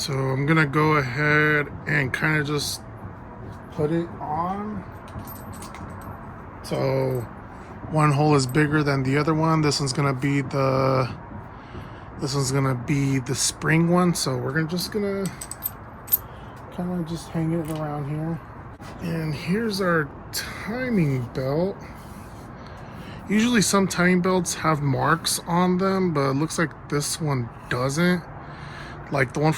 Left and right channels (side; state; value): both; identical; correlation 1.00